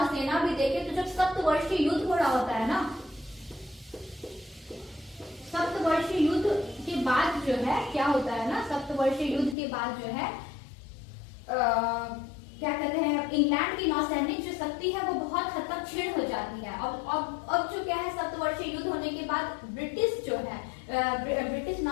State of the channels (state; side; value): drops out; right; at 9.6 s